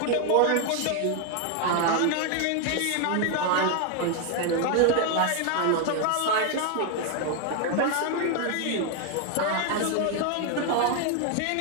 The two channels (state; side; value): different; both; correlation 0.01